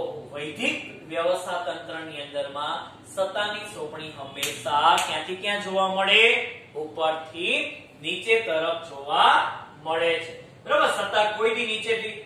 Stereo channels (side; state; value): both; identical; correlation 1.00